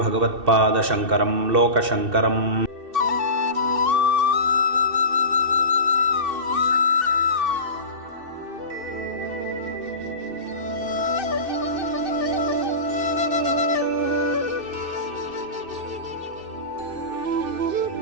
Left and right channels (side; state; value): left; late; 2.6 ms